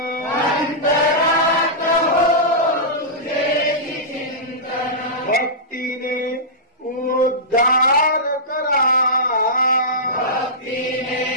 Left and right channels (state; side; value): normal; both; correlation -0.15